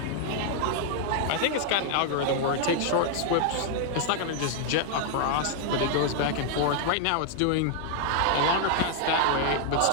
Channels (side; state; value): both; different; correlation 0.00